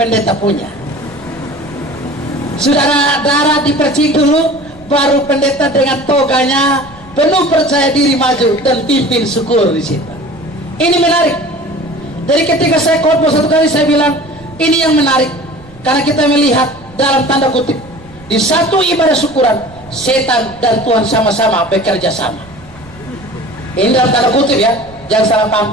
punya. Saudara, darah dipercik dulu, baru pendeta dengan toganya penuh percaya diri maju dan pimpin syukur di situ. Ini menarik. Jadi ketika saya khotbah satu kali saya bilang ini yang menarik, karena kita melihat dalam tanda kutip di satu ibadah syukuran setan dan Tuhan sama-sama bekerja sama. Ini dalam tanda kutip ya, jangan salah paham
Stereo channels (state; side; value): noise; right; rumble, 23 dB below the sound